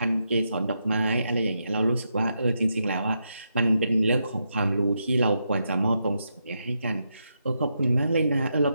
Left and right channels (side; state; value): both; inverted; correlation -0.83